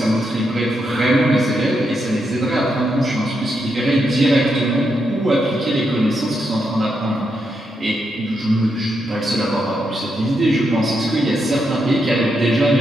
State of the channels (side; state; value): both; normal; correlation 0.82